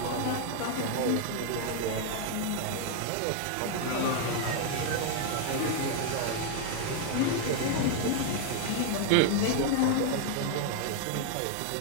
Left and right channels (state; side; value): different; both; correlation 0.00